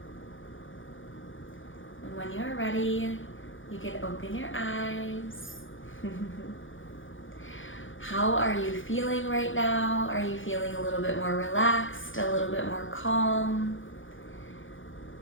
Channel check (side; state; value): right; late; 0.57 ms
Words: When you're ready, you can open your eyes. How are you feeling right now? Are you feeling a little bit more relaxed, a little bit more calm?